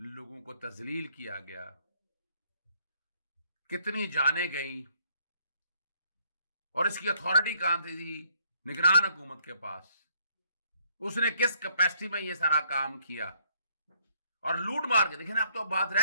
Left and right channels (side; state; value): both; inverted; correlation -0.68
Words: کو تذلیل کیا گیا, کتنی جانیں گئیں, اور اس کی اتھارٹی کہاں تھی؟ نگران حکومت کے پاس. اس نے کس کیپیسٹی میں یہ سارا کام کیا اور لوٹ مار کے. دیکھیں نا, اب تو بات